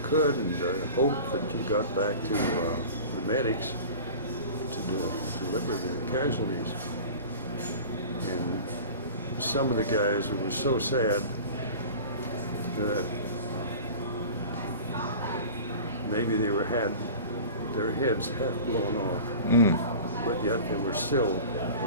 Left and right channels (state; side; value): inverted; both; correlation -0.37